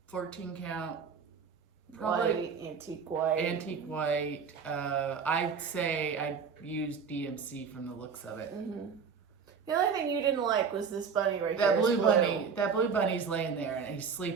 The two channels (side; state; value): left; quieter; 6.1 dB